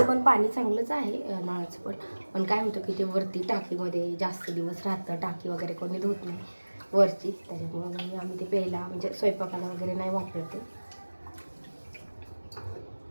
पण पाणी चांगलंच आहे नळाचं, पण काय होतं की ते वरती टाकीमध्ये जास्त दिवस राहतं, टाकी वगैरे कोणी धुत नाही वरची, त्याच्यामुळे आम्ही ते प्यायला म्हणजे स्वयंपाकाला वगैरे नाही वापरते.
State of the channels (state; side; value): inverted; both; correlation -1.00